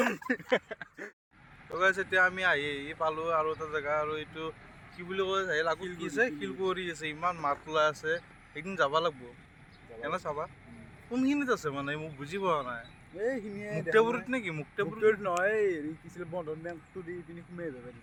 এতিয়া আমি আহি পালোঁ আৰু এটা জেগা, আৰু এইটো কি বুলি কয়, লাগু কি আছে, শিলকুঁৱৰী আছে, ইমান মাত ওলাই আছে, একদিন যাব লাগিব। কেনে চাবা কোনখিনিত আছে মানে মোক বুজি পোৱা নাই এইখিনিয়ে মুক্তাপুৰীত নেকি মুক্তাপুৰীত নহয় হেৰি কি আছিল বন্ধন বেংকটো দি পিনি সোমাই যাব পাৰি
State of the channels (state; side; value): identical; both; correlation 1.00